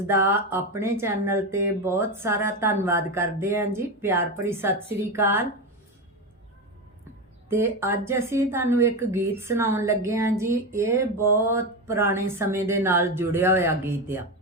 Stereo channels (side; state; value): both; normal; correlation 0.16